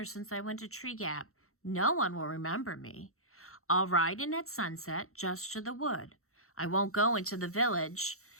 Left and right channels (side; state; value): right; late; 0.63 ms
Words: since I went to Tree Gap. No one will remember me. I'll ride in at sunset just to the wood. I won't go into the village,